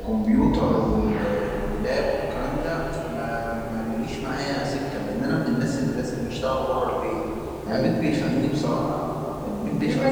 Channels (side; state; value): both; identical; correlation 1.00